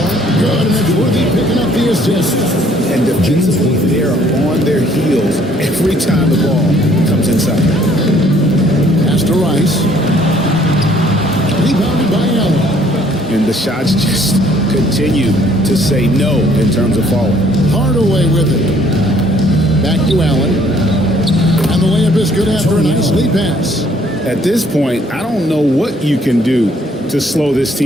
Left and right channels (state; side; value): normal; both; correlation 0.62